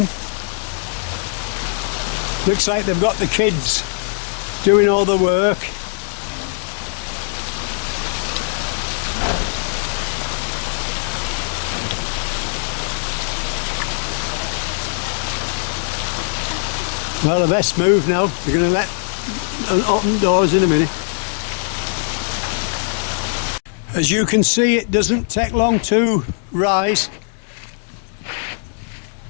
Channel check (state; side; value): silent; right; digital silence